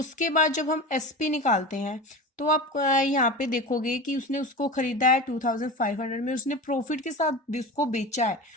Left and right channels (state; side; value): normal; both; correlation 0.29